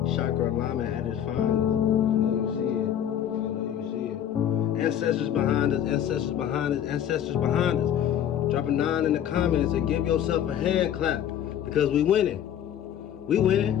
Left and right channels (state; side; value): quieter; right; 10.0 dB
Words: Chakra alignment at its finest. I know you see it. I know you see it. Ancestors behind us, ancestors behind us, ancestors behind us. Drop a 9 in the comments and give yourself a hand clap because we winning. We winning.